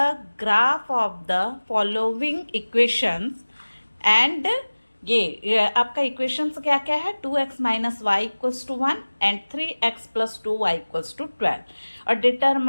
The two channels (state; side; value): inverted; both; correlation -1.00